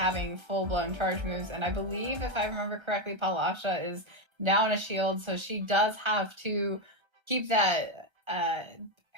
full-blown charge moves, and I believe, if I remember correctly, Palasha is down a shield, so she does have to keep that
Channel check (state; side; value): late; left; 1.3 ms